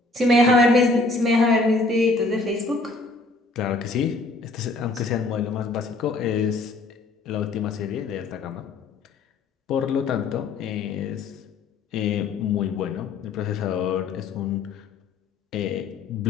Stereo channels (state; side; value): quieter; right; 3.3 dB